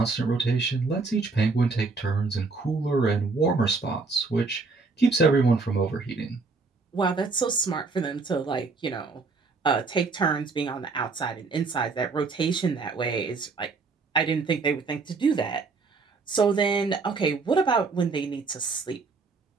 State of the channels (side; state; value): left; quieter; 4.2 dB